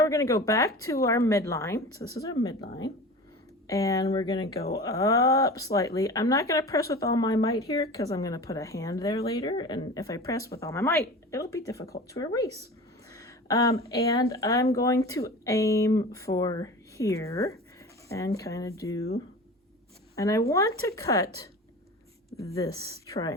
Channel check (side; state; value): both; normal; correlation 0.35